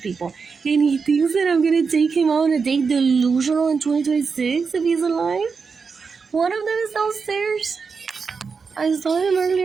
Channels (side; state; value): left; quieter; 5.2 dB